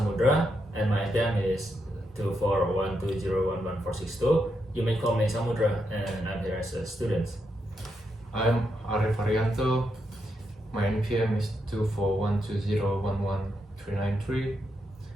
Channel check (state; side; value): normal; both; correlation 0.82